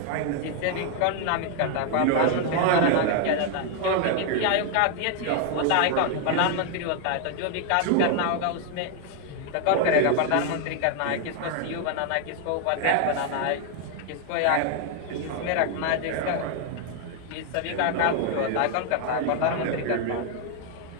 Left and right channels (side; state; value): both; different; correlation 0.00